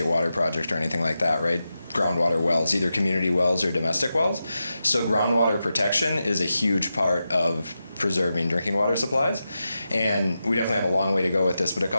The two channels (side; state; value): both; inverted; correlation -0.90